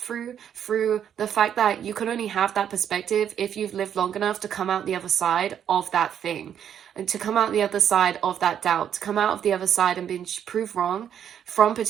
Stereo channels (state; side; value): quieter; left; 9.1 dB